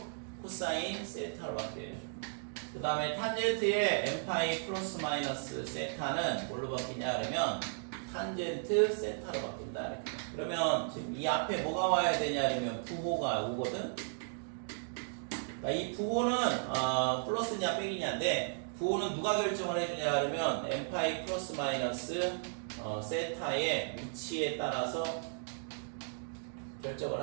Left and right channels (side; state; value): left; silent; digital silence